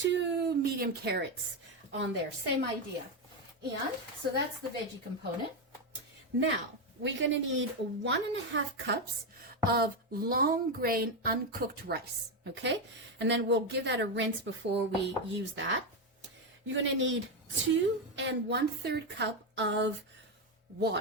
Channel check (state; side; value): normal; both; correlation 0.08